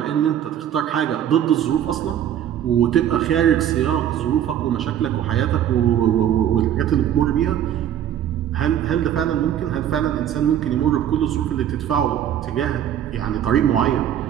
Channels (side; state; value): left; quieter; 10.4 dB